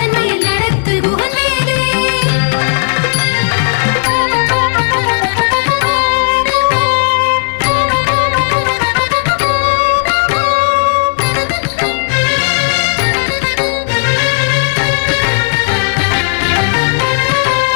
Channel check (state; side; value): silent; right; digital silence